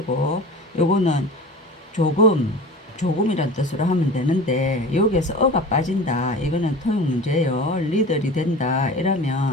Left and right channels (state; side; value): normal; both; correlation 0.36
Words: 요거는 조금이란 뜻으로 하면 되는데 여기에서 어가 빠진다. 이거는 토용 문제예요. 리들이 된다.